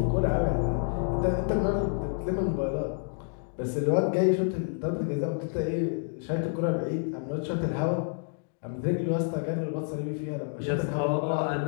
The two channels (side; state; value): right; silent; digital silence